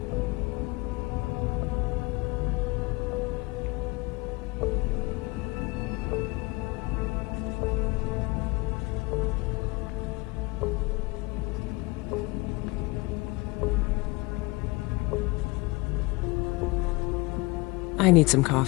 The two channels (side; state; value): right; quieter; 23.6 dB